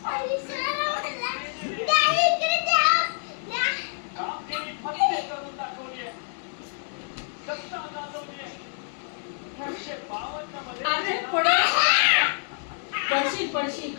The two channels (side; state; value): right; silent; digital silence